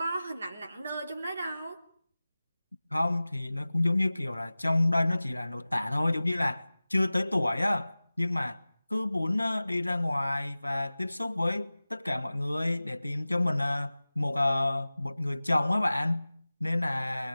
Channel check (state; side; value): inverted; both; correlation -0.98